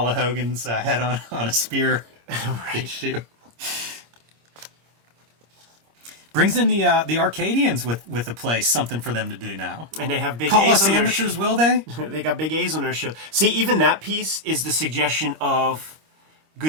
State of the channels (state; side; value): late; left; 26 ms